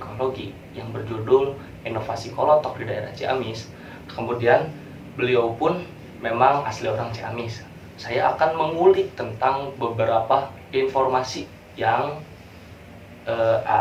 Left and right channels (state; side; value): identical; both; correlation 1.00